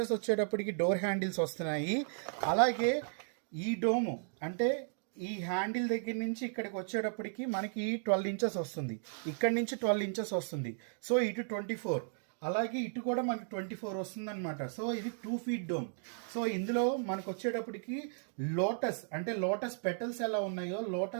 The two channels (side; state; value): left; silent; digital silence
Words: వచ్చేటప్పటికి డోర్ హ్యాండిల్స్ వస్తున్నాయి. అలాగే ఈ డోము అంటే ఈ హ్యాండిల్ దగ్గర నుంచి ఇక్కడికి వచ్చేటప్పటికి మనకి 12 inches వస్తుంది, ఇక్కడ నుంచి 12 inches వస్తుంది. సో ఇటు 24, అలాగే ఇటు కూడా మనకి 24 వస్తుంది అనమాట. సో ఇది 2 feet డోమ్. సో ఇందులో మనకు వచ్చేటప్పటికి లోటస్ అంటే లోటస్ పెటల్స్ ఎలా ఉన్నాయో